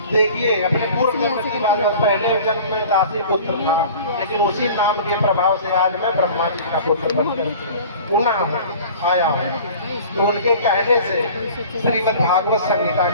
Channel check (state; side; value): inverted; both; correlation -0.43